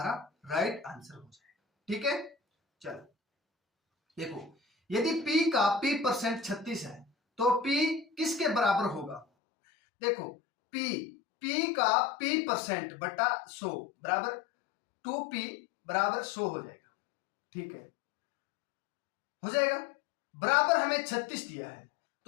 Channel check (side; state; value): right; drops out; at 9.2 s